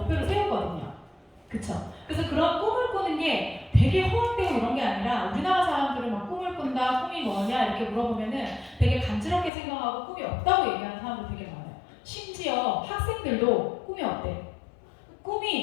세우거든요. 그쵸? 그래서 그런 꿈을 꾸는 게 되게 허황되고 이런 게 아니라, 우리나라 사람들은 막 꿈을 꾼다, 꿈이 뭐냐 이렇게 물어보면은 되게 간지럽게 생각하고 꿈이 없다고 얘기하는 사람들 되게 많아요. 심지어 학생들도 꿈이 없대.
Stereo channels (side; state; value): right; drops out; at 9.5 s